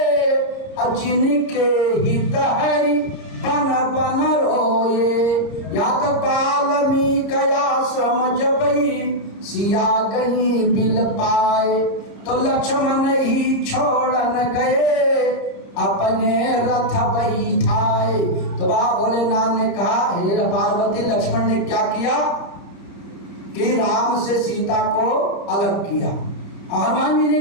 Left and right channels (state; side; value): late; right; 30 ms